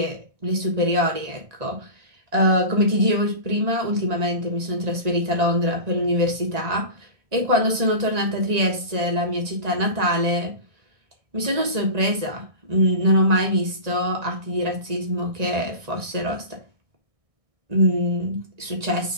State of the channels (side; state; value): left; late; 1.8 ms